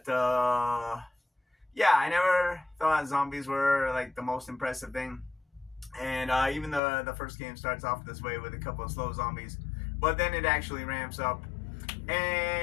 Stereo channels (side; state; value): right; drops out; at 6.8 s